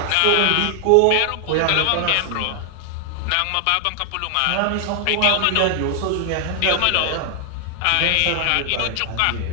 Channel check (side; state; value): both; different; correlation 0.00